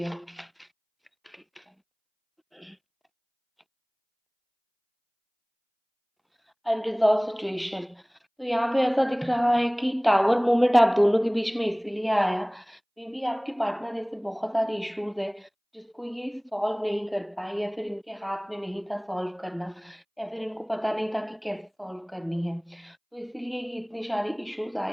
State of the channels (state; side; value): identical; both; correlation 1.00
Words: Unresolved situation, तो यहाँ पे ऐसा दिख रहा है कि टावर मोमेंट आप दोनों के बीच में इसीलिए आया, मे बी आपके पार्टनर ऐसे बहुत सारे इश्यूज है जिसको ये सॉल्व नहीं कर पाए, या फिर इनके हाथ में नहीं था सॉल्व करना, या फिर इनको पता नहीं था कि कैसे सॉल्व करनी है, तो इसीलिए ये इतने सारे इश्यूज